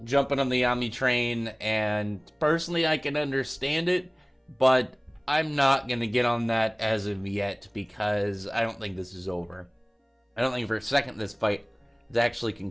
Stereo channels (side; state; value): both; identical; correlation 1.00